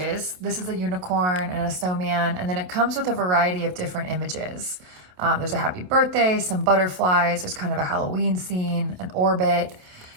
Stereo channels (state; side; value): late; left; 27 ms